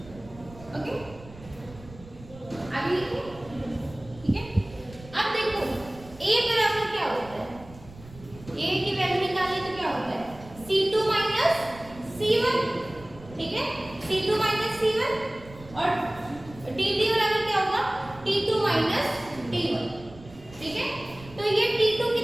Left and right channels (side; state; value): right; noise; rumble, 19 dB below the sound